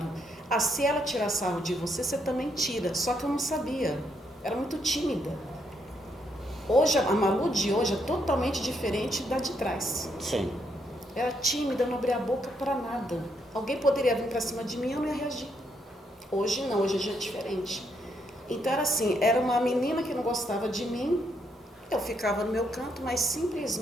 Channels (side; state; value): both; normal; correlation 0.76